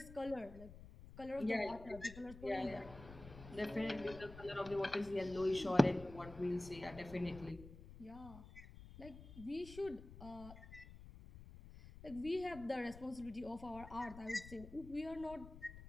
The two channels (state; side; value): noise; left; rumble, 15 dB below the sound